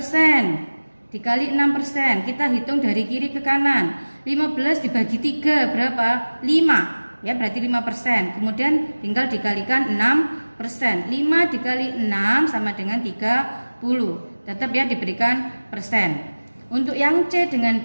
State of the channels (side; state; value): both; inverted; correlation -1.00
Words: dikali 6%. Kita hitung dari kiri ke kanan. 15 dibagi 3 berapa? 5. Ya, berarti 5%. Kemudian tinggal dikalikan 6%. 5 dikali 6 sama dengan 30. Tetap ya diberikan persen. Untuk yang C dengan